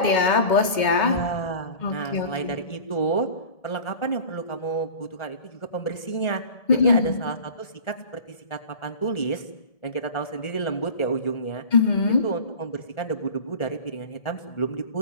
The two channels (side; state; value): right; late; 2.2 ms